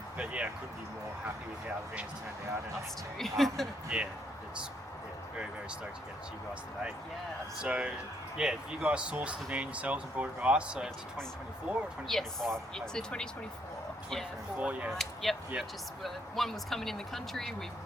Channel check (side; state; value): both; normal; correlation 0.72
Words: But I couldn't be more happy with how the van's turned out. And, us too. It's very, very stoked to get it to you guys today. Yeah. So you guys sourced the van yourselves and brought it to us. So it's 2024 or 2025? Yes, it's a 2024. 2024, Yep. One was coming in the country. We